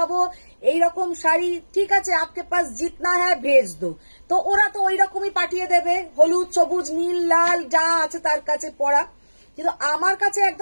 এইরকম শাড়ি, ঠিক আছে আপকে পাস জিতনা হ্যাঁ ভেজ দো, তো ওরা তো ওই রকমই পাঠিয়ে দেবে, হলুদ সবুজ নীল লাল যা আছে তার কাছে পড়া। কিন্তু আমার কাছে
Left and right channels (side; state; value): both; inverted; correlation -1.00